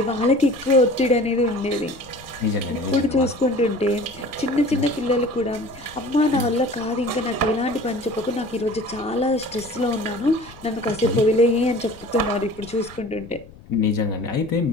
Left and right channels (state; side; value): noise; left; rumble, 21 dB below the sound